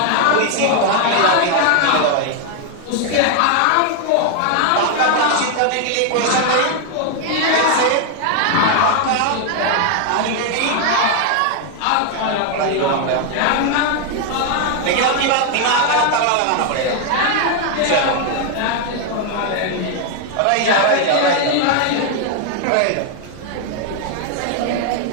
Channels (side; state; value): both; different; correlation 0.00